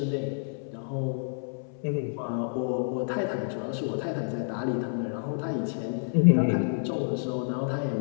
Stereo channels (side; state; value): right; silent; 59 dB below the other